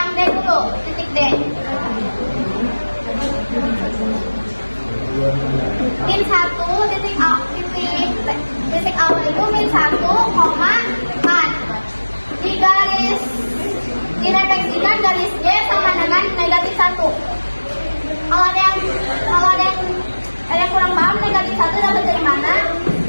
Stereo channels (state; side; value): inverted; both; correlation -1.00